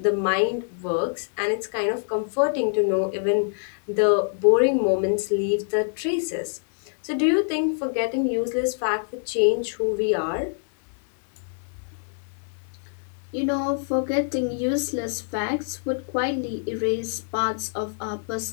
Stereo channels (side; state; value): right; silent; digital silence